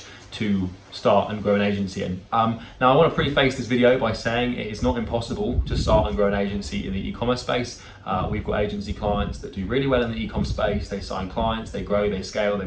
to start and grow an agency in. Now I want to preface this video by saying it is not impossible to start and grow an agency in the e-commerce space. We've got agency clients that do really well in the e-com space. They sign clients, they grow, they scale, they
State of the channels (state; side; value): identical; both; correlation 1.00